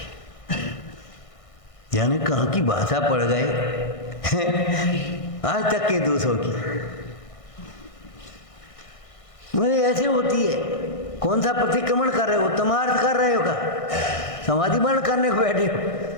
यानी कहाँ की भाषा पड़ गए आज तक के दोषों की। मुझे ऐसे होती है। कौन सा प्रतिक्रमण कर रहे हो? तमार्थ कर रहे हो का? समाधि बंद करने को बैठे हो?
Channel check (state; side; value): late; right; 1.6 ms